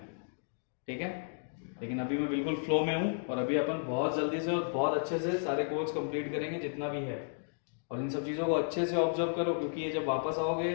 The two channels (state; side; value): silent; right; digital silence